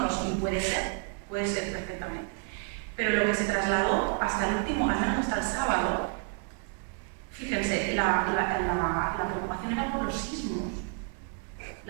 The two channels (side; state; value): left; quieter; 39.5 dB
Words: lo sé, puede ser perfectamente. Pero lo que se trasladó hasta el último, al menos hasta el sábado, fíjense, la preocupación era por los sismos.